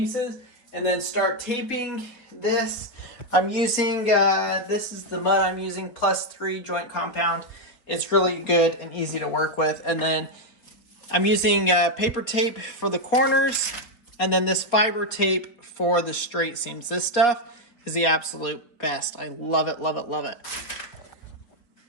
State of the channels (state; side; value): late; right; 4.2 ms